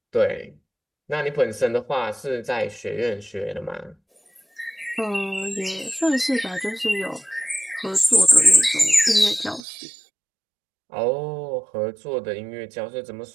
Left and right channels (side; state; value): left; drops out; at 9.6 s